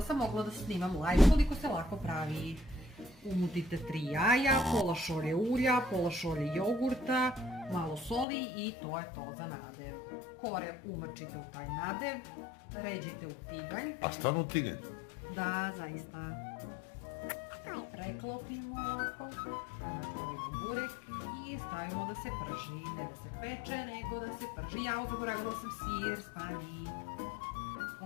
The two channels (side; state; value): right; drops out; at 8.2 s